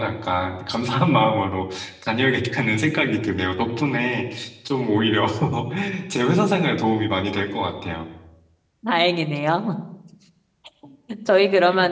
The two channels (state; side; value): identical; both; correlation 1.00